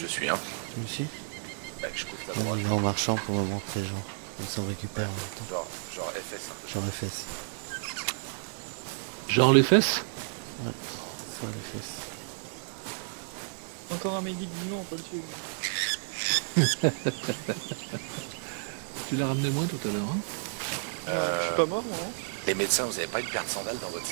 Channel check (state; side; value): silent; left; digital silence